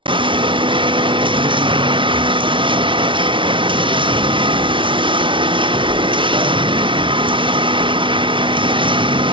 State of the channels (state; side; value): late; left; 0.24 ms